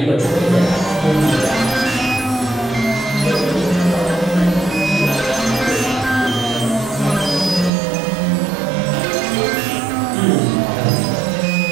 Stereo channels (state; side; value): drops out; left; at 7.7 s